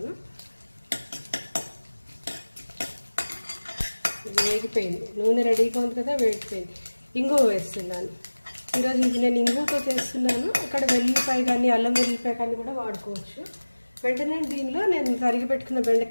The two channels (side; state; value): both; inverted; correlation -1.00